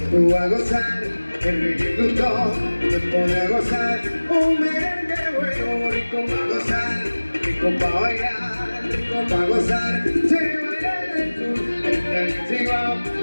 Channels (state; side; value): inverted; both; correlation -1.00